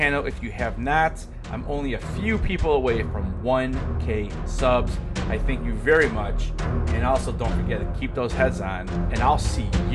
if you have not. I'm only a few people away from 1K subs. I thank you very much. And also don't forget to keep those heads on, and I'll see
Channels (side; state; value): both; identical; correlation 1.00